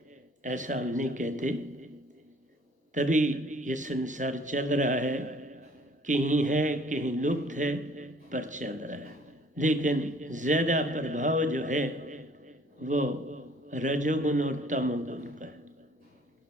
ऐसा हम नहीं कहते। तभी ये संसार चल रहा है, कहीं है कहीं लुप्त है, पर चल रहा है। लेकिन ज़्यादा प्रभाव जो है वो रजोगुण और तमोगुण का है।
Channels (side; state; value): both; normal; correlation 0.56